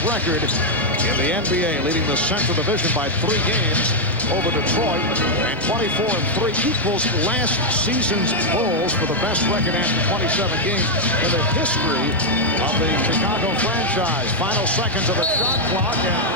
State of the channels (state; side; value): normal; both; correlation -0.01